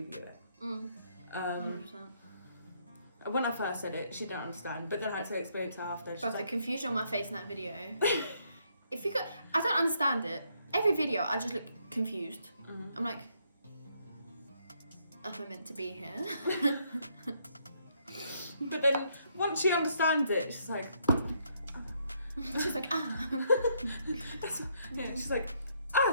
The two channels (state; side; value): inverted; both; correlation -0.72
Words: view it. 100%. When I first said it, she didn't understand, but then I had to explain it to her after. But the confusion on my face in that video. I don't understand it. Every video, I just look confused. I'm like, am I meant to be here? But then once she understands it, she's like, she's like, she's like,